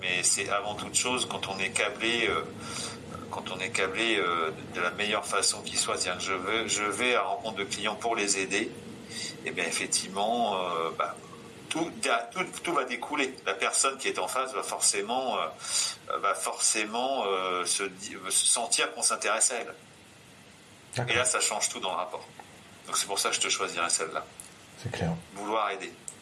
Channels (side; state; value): both; identical; correlation 1.00